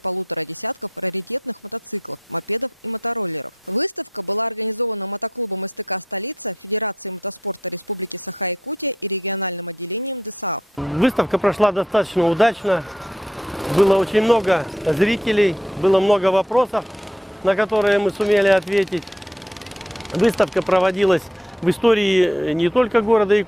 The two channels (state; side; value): normal; both; correlation 0.72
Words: десятков раритетных мотоциклов, мопедов и мотороллеров. Выставка была организована мотоклубом СТК «Столица», Федерацией мотоспорта Республики Саха-Якутия и региональным отделением ДСААФ. Выставка прошла достаточно удачно. Было очень много зрителей, было много вопросов, на которые мы сумели ответить. Выставка проводилась в истории не только города